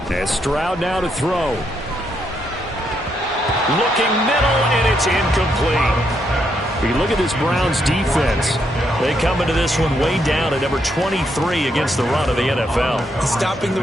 And Stroud now to throw. Looking middle, and it's incomplete. We look at this Browns defense. They come into this one way down at number 23 against the run of the NFL. Stopping the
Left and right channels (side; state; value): both; normal; correlation 0.77